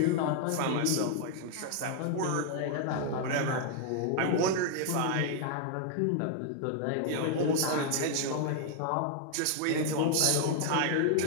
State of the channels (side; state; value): both; different; correlation 0.00